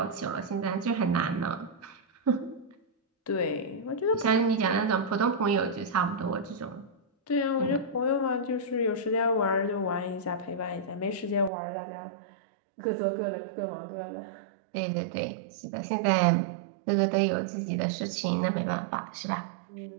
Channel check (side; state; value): left; drops out; at 11.5 s